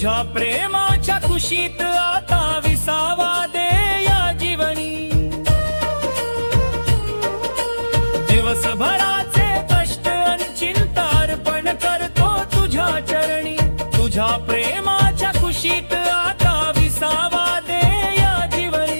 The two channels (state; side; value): inverted; both; correlation -1.00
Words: प्रेमाच्या कुशीत आता विसावा दे या जीवनी. दिवसभराचे कष्ट अन चिंतार्पण करतो तुझ्या चरणी. तुझ्या प्रेमाच्या कुशीत आता विसावा दे या